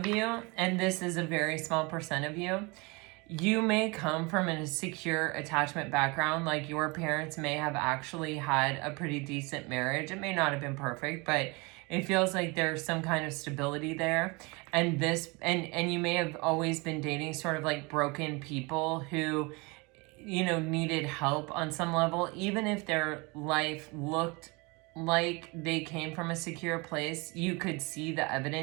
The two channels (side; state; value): left; quieter; 27.1 dB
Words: you, and this is a very small percent of you, you may come from a secure attachment background. Like your parents may have actually had a pretty decent marriage. It may not have been perfect, but it feels like there's some kind of stability there. And this, and you may have always been dating sort of like broken people who, you know, needed help on some level, even if their life looked like they came from a secure place. You could see the